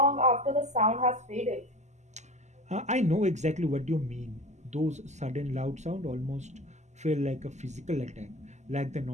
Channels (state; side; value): late; left; 0.33 ms